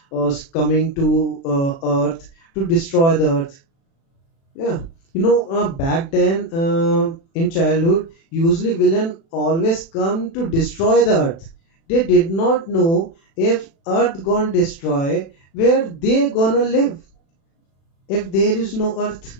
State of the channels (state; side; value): late; right; 36 ms